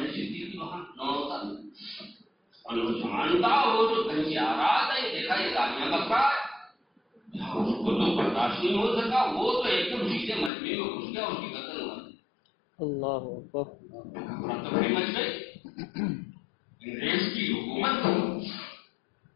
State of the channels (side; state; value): right; drops out; at 10.5 s